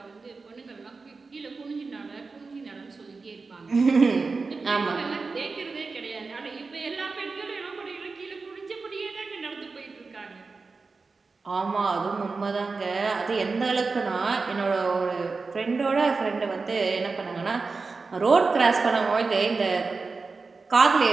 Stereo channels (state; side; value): quieter; left; 4.2 dB